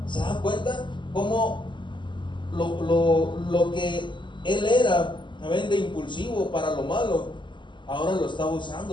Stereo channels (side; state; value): right; late; 0.23 ms